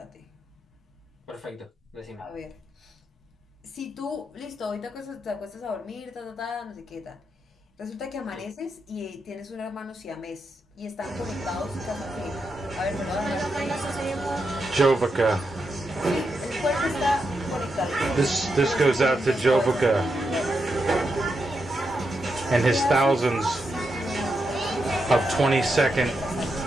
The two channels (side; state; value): both; normal; correlation 0.85